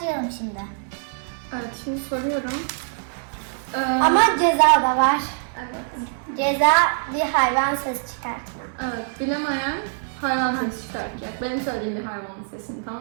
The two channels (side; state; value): left; silent; digital silence